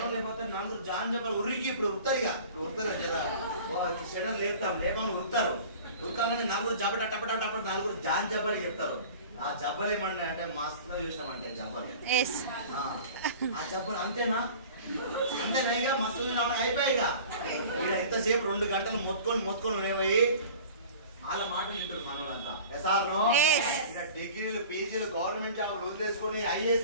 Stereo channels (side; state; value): both; inverted; correlation -0.42